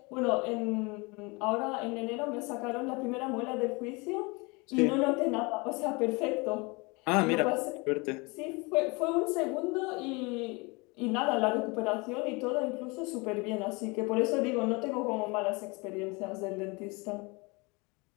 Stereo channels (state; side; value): quieter; right; 27.3 dB